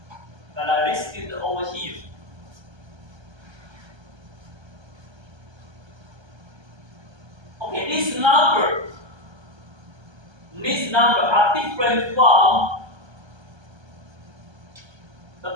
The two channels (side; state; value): left; late; 1.3 ms